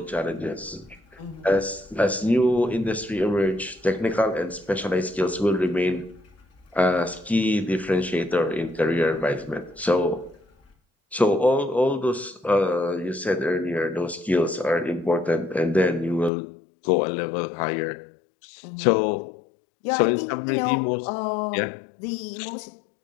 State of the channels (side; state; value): right; drops out; at 16.3 s